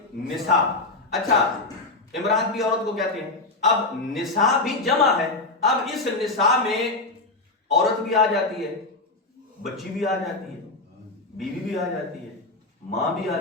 نساء. اچھا، امرأت بھی عورت کو کہتے ہیں. اب نساء بھی جمع ہے، اب اس نساء میں عورت بھی آ جاتی ہے، بچی بھی آ جاتی ہے، بیوی بھی آ جاتی ہے، ماں بھی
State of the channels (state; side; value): quieter; right; 3.2 dB